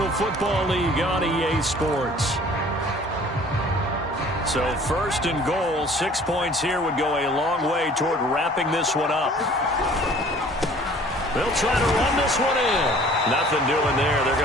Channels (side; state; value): both; normal; correlation 0.51